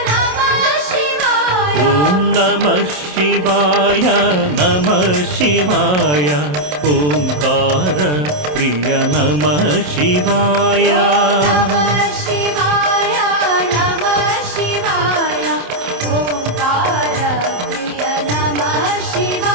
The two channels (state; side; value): late; left; 27 ms